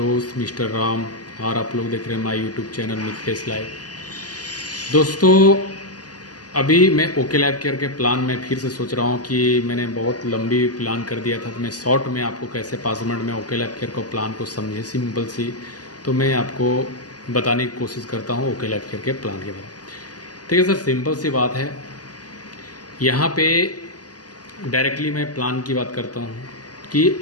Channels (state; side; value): late; right; 0.68 ms